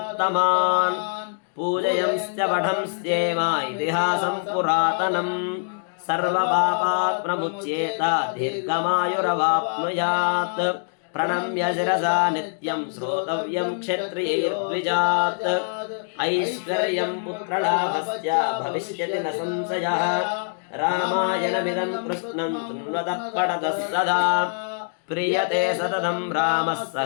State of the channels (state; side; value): silent; right; digital silence